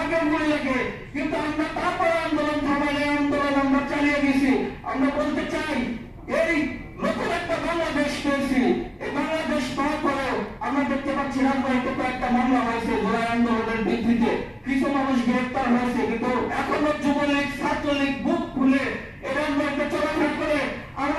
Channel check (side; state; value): both; identical; correlation 1.00